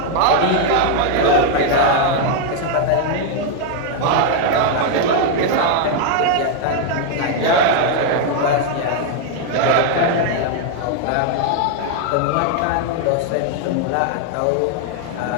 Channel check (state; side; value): different; both; correlation 0.00